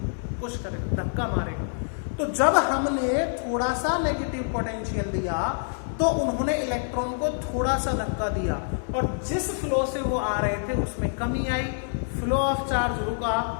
पुश करेगा, धक्का मारेगा। तो जब हमने थोड़ा सा नेगेटिव पोटेंशियल दिया तो उन्होंने इलेक्ट्रॉन को थोड़ा सा धक्का दिया और जिस फ्लो से वो आ रहे थे उसमें कमी आई, फ्लो ऑफ चार्ज रुका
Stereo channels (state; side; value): silent; right; 61 dB below the other